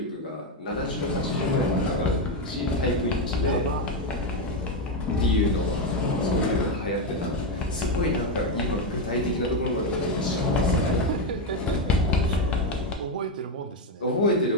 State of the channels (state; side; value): normal; both; correlation 0.07